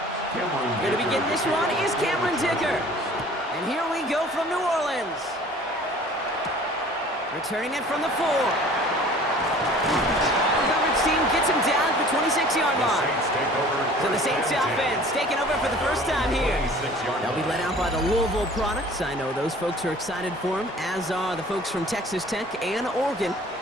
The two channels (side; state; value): both; normal; correlation 0.48